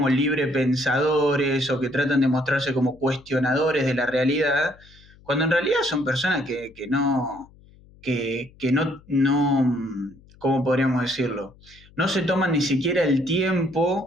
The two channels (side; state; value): left; noise; hum, 26 dB below the sound